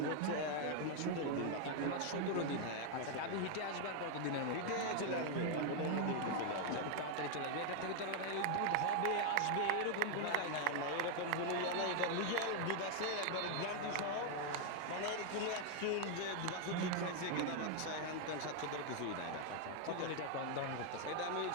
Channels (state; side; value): different; both; correlation 0.00